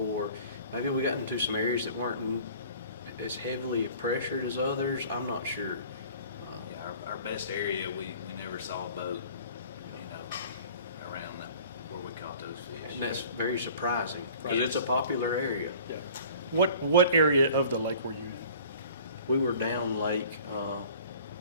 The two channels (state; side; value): inverted; both; correlation -0.48